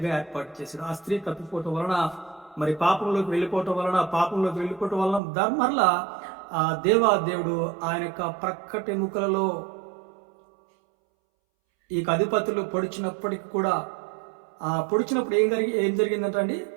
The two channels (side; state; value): left; drops out; at 5.2 s